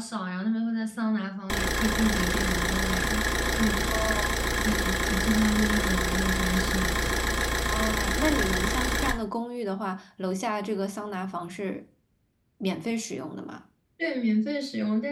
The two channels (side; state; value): both; identical; correlation 1.00